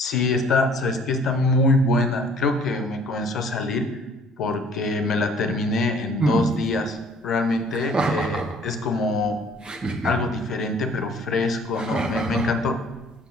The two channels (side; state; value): both; normal; correlation 0.55